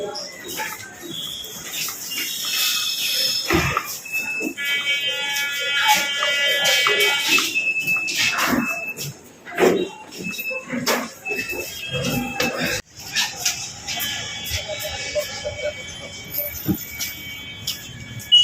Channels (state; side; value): identical; both; correlation 1.00